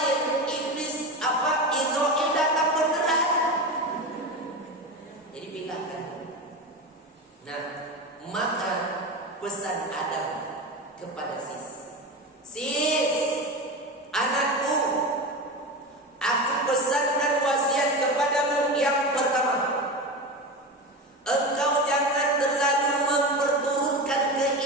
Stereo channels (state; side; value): normal; both; correlation 0.24